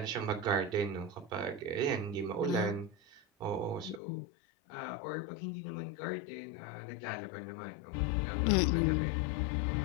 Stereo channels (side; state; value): right; drops out; at 4.0 s